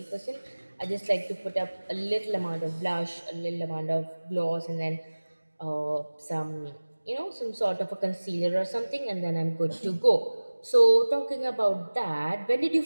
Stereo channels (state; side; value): inverted; both; correlation -1.00